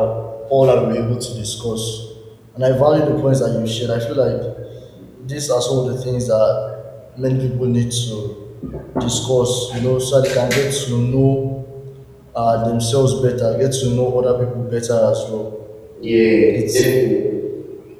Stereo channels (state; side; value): identical; both; correlation 1.00